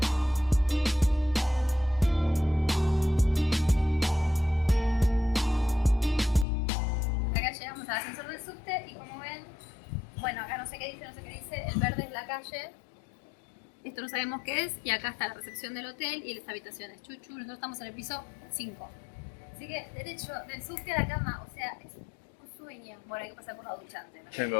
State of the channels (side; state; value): right; drops out; at 6.5 s